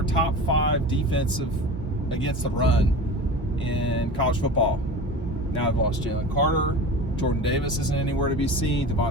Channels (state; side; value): normal; both; correlation 0.33